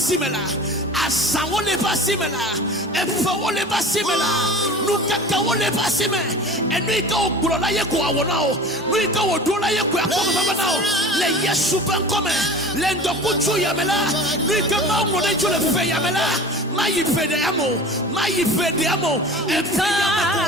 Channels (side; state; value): both; normal; correlation 0.39